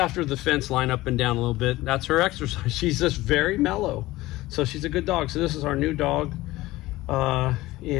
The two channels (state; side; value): quieter; right; 18.1 dB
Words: the fence line up and down a little bit. That's her exercise. She's just very mellow. So she's a good dog. So this is our new dog.